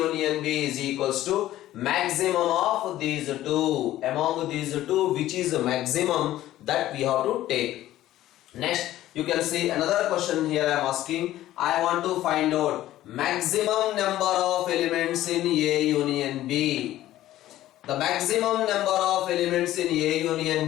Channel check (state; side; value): quieter; right; 14.2 dB